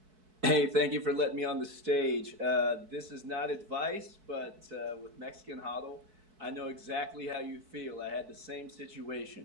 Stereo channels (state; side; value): late; left; 4.6 ms